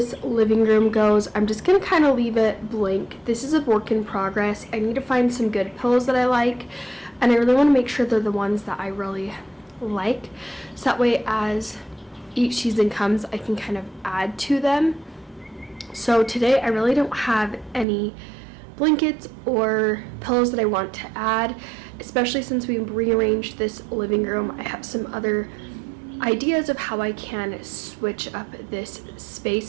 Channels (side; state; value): left; drops out; at 17.9 s